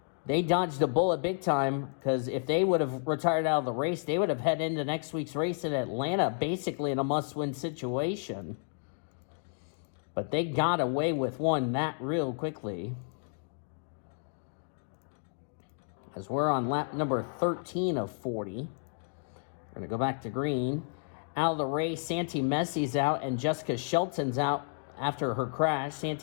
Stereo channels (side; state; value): right; silent; digital silence